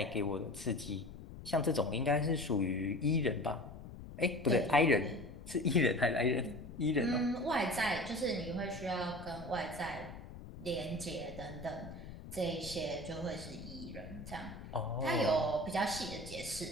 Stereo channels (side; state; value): left; noise; rumble, 13 dB below the sound